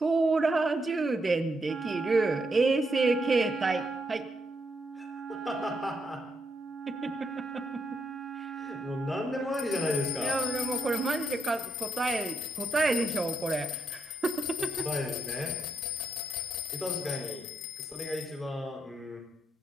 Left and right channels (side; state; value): both; normal; correlation 0.78